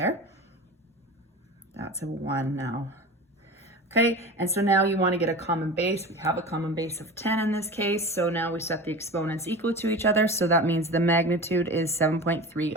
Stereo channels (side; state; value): both; normal; correlation 0.32